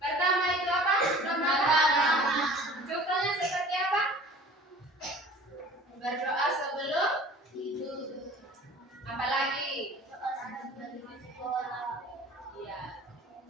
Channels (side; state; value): both; normal; correlation 0.46